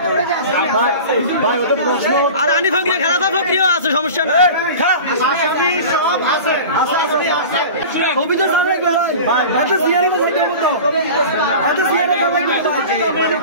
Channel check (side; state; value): both; inverted; correlation -0.35